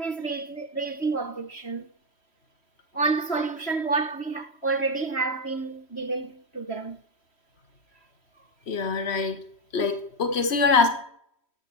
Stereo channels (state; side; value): late; right; 3.1 ms